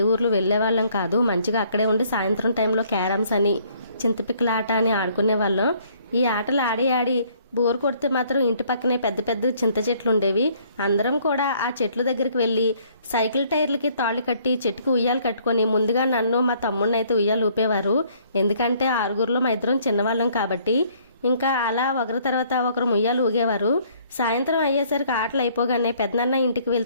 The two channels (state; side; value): inverted; both; correlation -0.62